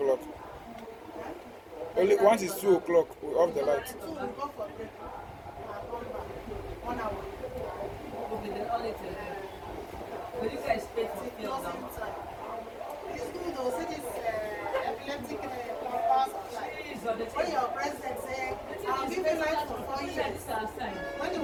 Only once it's 2 o'clock, we off the light. Will you guys pay for fuel now? It's good though, see this epileptic power supply. When your president said, I'll give you light for 4 years. When he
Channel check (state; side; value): identical; both; correlation 1.00